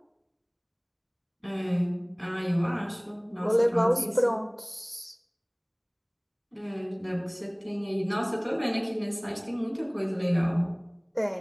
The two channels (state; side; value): identical; both; correlation 1.00